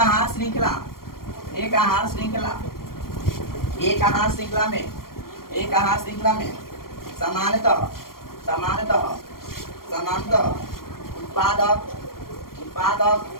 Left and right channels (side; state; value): right; late; 0.93 ms